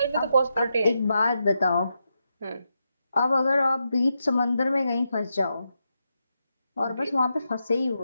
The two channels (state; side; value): inverted; both; correlation -0.85